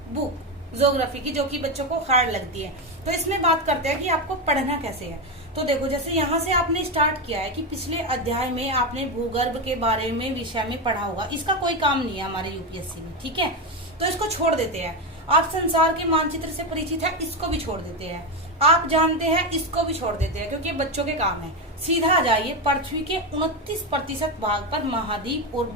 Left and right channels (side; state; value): both; normal; correlation 0.12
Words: बुक ज्योग्राफी की, जो कि बच्चों को हार्ड लगती है। तो इसमें बात करते हैं कि आपको पढ़ना कैसे है। तो देखो, जैसे यहाँ से आपने स्टार्ट किया है कि पिछले अध्याय में आपने भूगर्भ के बारे में विषय में पढ़ा होगा, इसका कोई काम नहीं है हमारे यूपीएससी में, ठीक है, तो इसको छोड़ देते हैं। आप संसार के मानचित्र से परिचित है, इसको भी छोड़ देते हैं। आप जानते हैं, इसको भी छोड़ देते हैं, क्योंकि बच्चों के काम है। सीधा आ जाइए, पृथ्वी के 29% भाग पर महाद्वीप और